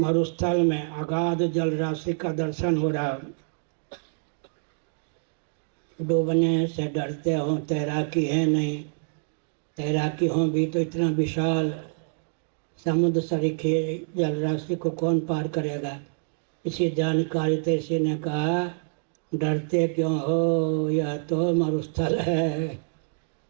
में अगाध जल राशि का दर्शन हो रहा, डूबने से डरते हो, तैराकी है नहीं, तैराकी हो भी तो इतना विशाल समुद्र सरीखे जल राशि को कौन पार करेगा। इसी जानकारी से इसी ने कहा डरते क्यों हो, यह तो मरुस्थल है।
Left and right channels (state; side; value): silent; left; digital silence